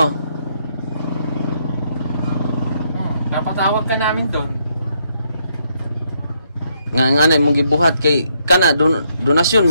Napatawag ka namin doon. Nga mong gibuhat kay kana donasyon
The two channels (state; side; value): inverted; both; correlation -0.74